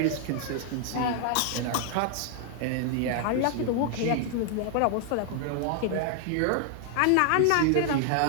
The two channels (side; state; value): both; different; correlation 0.00